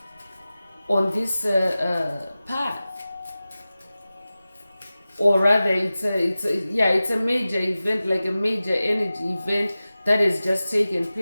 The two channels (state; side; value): inverted; both; correlation -0.96